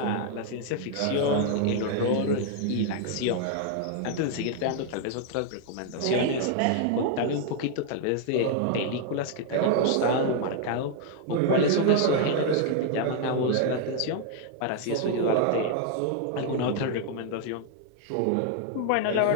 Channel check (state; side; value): different; both; correlation 0.00